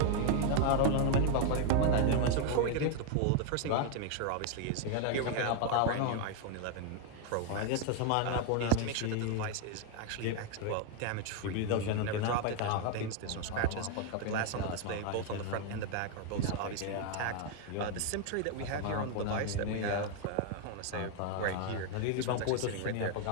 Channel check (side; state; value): both; different; correlation 0.01